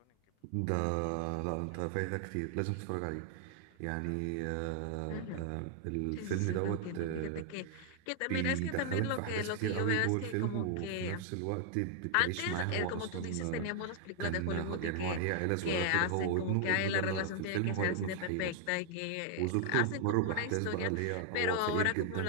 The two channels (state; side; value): different; both; correlation 0.00